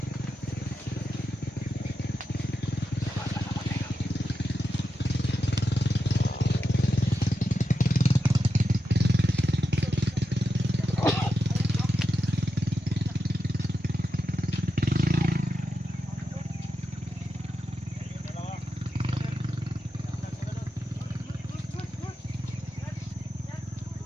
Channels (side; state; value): both; normal; correlation 0.88